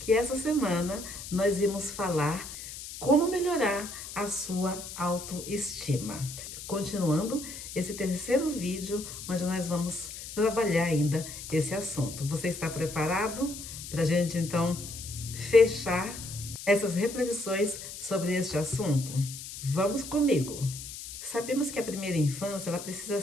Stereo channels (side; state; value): left; noise; hiss, 10 dB below the sound